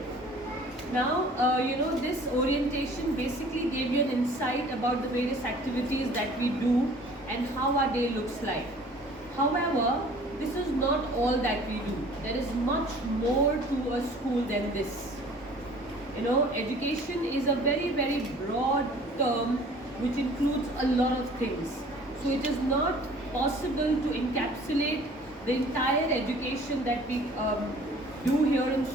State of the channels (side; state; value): both; normal; correlation 0.50